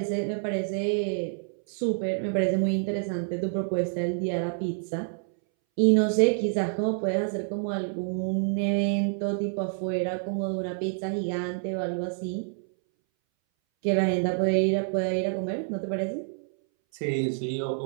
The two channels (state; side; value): silent; left; 60 dB below the other